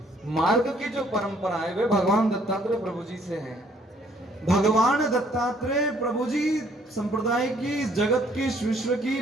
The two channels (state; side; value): normal; both; correlation 0.63